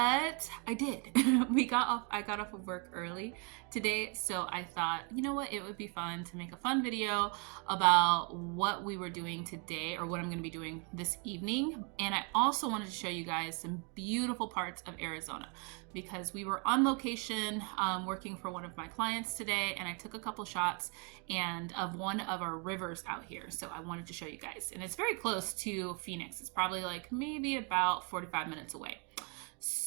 I did. I got off of work early today, so I thought, you know what, it would be fun to make a fun video about what we were doing today, or what I'm going to be doing this evening. And I also wanted to show you guys some beautiful parts of Arizona, because we were on location working for one of my clients today, and I took a couple shots of one of our rivers out here. So I wanted to show you guys, and it's very close to Phoenix. It's probably like maybe about 45 minutes away.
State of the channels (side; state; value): left; quieter; 35.4 dB